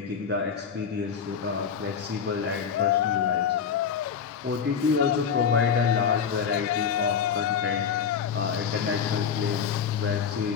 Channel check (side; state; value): right; quieter; 7.0 dB